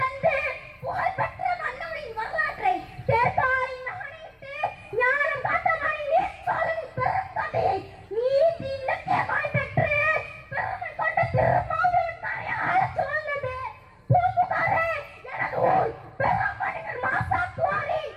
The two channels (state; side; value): identical; both; correlation 1.00